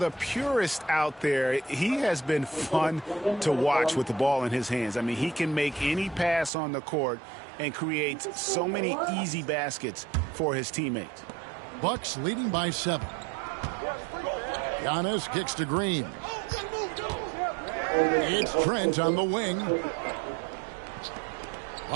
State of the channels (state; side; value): drops out; left; at 6.5 s